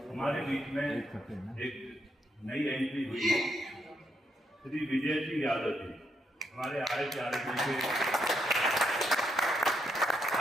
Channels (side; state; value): both; normal; correlation 0.78